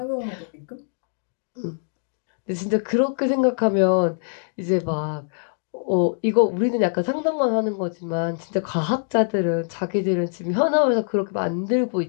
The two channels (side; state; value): right; silent; digital silence